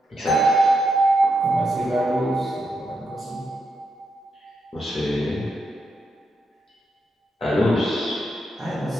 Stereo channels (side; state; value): both; normal; correlation 0.83